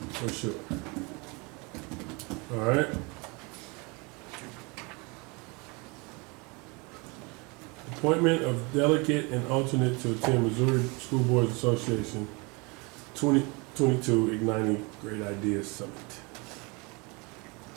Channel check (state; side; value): quieter; left; 28.6 dB